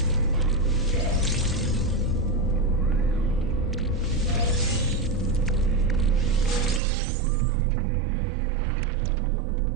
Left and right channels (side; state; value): left; drops out; at 6.8 s